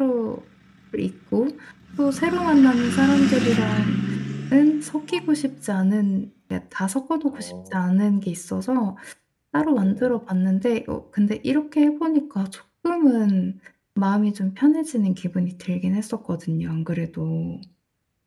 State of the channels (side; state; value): both; identical; correlation 1.00